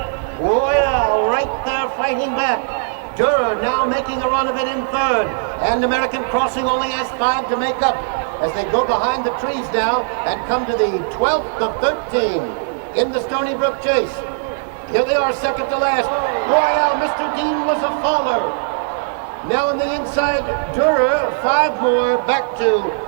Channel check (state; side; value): silent; left; 59 dB below the other